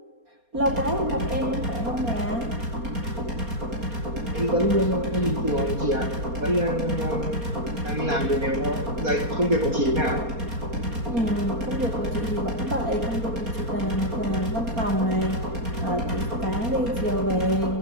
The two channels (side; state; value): left; late; 4.3 ms